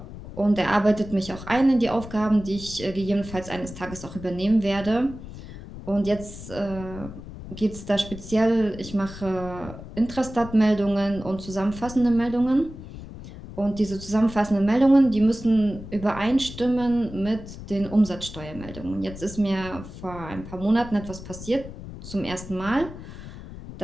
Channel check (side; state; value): left; noise; rumble, 13 dB below the sound